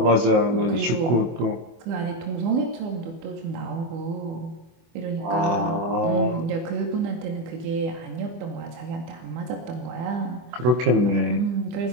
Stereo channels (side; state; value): left; late; 24 ms